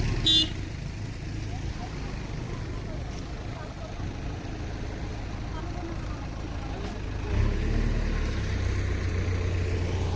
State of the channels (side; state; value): both; identical; correlation 1.00